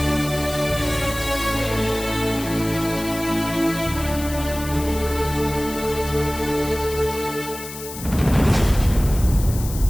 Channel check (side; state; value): left; noise; hiss, 12 dB below the sound